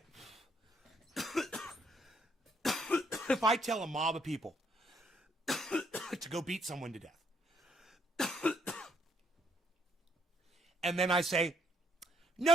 If I tell a mob of people to go beat someone to death, and then I say, no,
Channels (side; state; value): both; normal; correlation 0.71